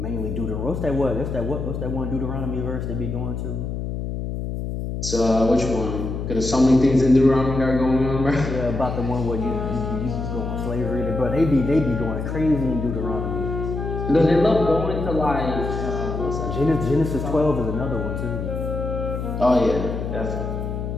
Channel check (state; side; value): noise; left; hum, 4 dB below the sound